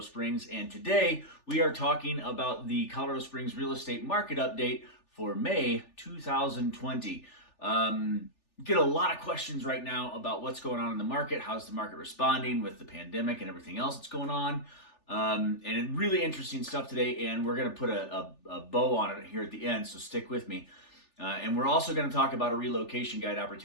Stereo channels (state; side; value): late; right; 3.4 ms